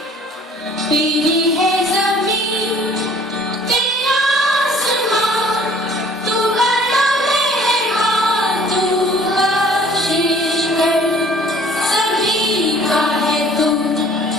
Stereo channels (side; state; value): both; normal; correlation 0.54